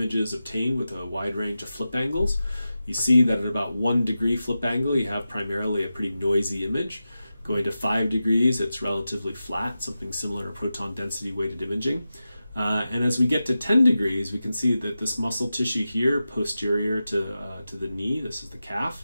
obtained with a wide range of flip angles. You see that at about 1 degree flip angle, you have primarily a pretty noisy image. Going to 5 degrees, it's relatively flat, something similar to proton density weighted imaging. And as we get to 10 degrees, we can see that this muscle tissue here, posterior to the knee, this is the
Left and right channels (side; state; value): both; inverted; correlation -0.92